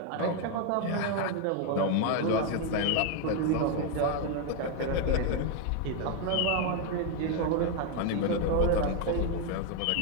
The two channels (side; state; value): both; different; correlation 0.01